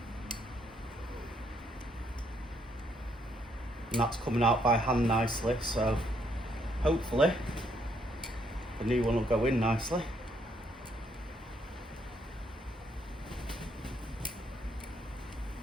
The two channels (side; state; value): both; normal; correlation 0.71